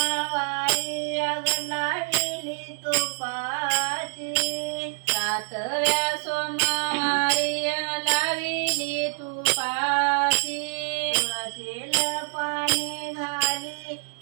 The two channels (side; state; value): left; silent; 61 dB below the other